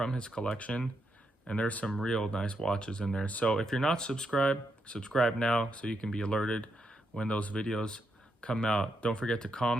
his collection. And there's some real nice watches in there. So if you're not subscribed, subscribe now so you can be alerted when those videos come out. Don't forget to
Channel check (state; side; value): normal; both; correlation 0.81